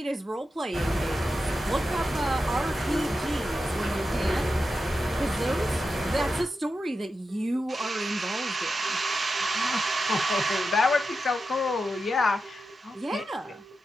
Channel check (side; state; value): both; normal; correlation 0.90